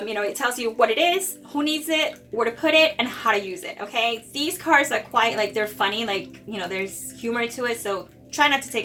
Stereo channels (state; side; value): identical; both; correlation 1.00